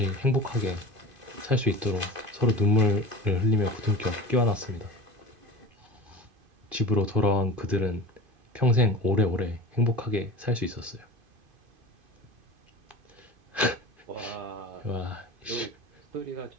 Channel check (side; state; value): left; late; 2.5 ms